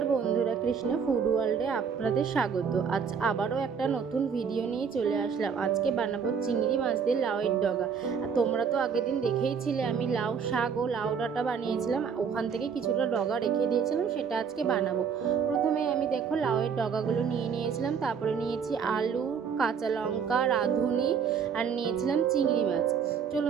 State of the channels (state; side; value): quieter; left; 6.6 dB